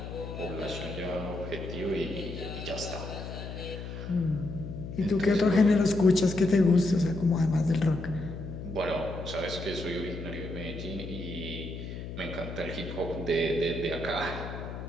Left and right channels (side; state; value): left; noise; hum, 8 dB below the sound